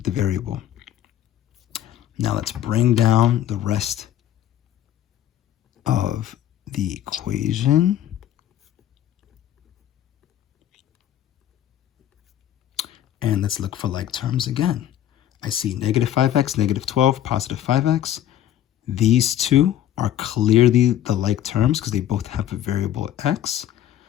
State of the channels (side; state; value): right; quieter; 11.5 dB